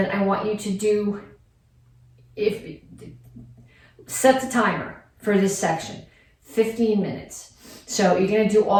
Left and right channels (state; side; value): identical; both; correlation 1.00